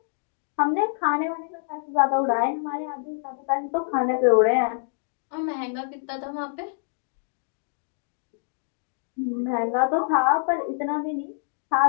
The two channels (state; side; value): silent; right; digital silence